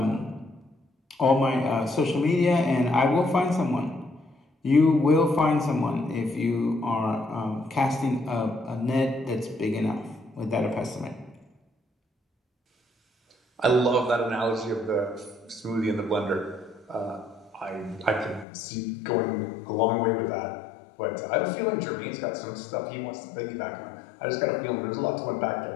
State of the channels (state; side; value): drops out; right; at 18.4 s